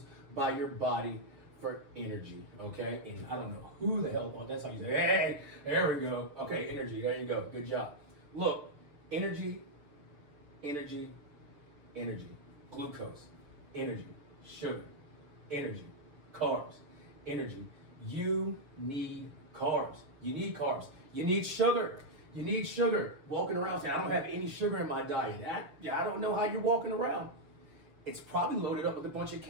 by your body for energy, okay? And I don't know who the hell, that's how you say, hey, there we go. Okay, energy, there you go, good job. Look, energy, glucose, energy, sugar, energy, carbs, energy. You need carbs. You need carbs. You need sugar. You need sugar. Walking around saying, I don't have any sugar in my diet. I don't know how you're walking around. It's probably loaded up with a bunch of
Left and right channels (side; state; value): left; late; 6.7 ms